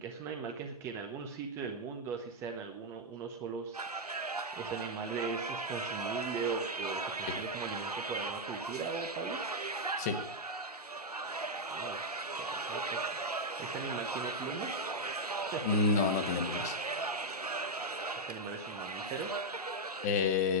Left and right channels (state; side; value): normal; both; correlation -0.01